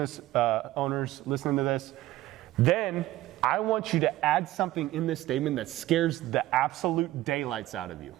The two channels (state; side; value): quieter; left; 16.0 dB